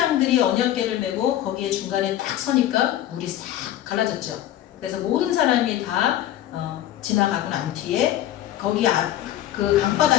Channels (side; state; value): right; quieter; 12.6 dB